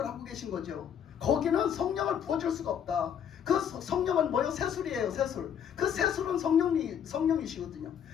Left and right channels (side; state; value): right; quieter; 8.6 dB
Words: 하고 계신 거죠. 거기는 성령을 부어줄 수가 없다. 그 성령은 뭐예요? 새술이에요. 새술. 그 새술은 성령이시거든요.